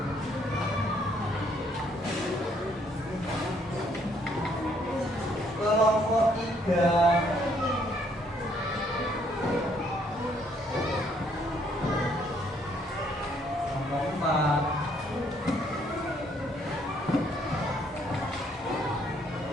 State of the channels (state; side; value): normal; both; correlation 0.67